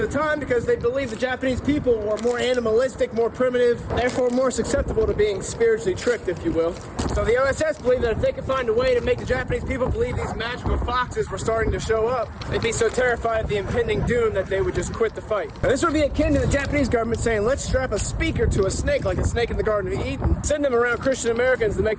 time because they believed the Japanese people were more animalistic, more primitive, therefore more susceptible to being spiritually tricked, if you will. So the OSS believed that if they could find a way to make the Japanese people believe these magical foxes were starting to show up, they'd be so terrified of the impending doom that they would just quit the fight. Now, this would be akin to the Japanese government saying, let's strap a speaker to a snake like a snake in the Garden of Eden, send them around Christian Americans to make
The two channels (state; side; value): identical; both; correlation 1.00